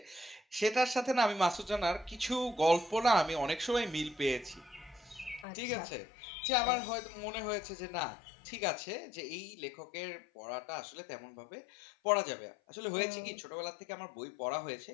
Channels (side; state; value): right; drops out; at 5.5 s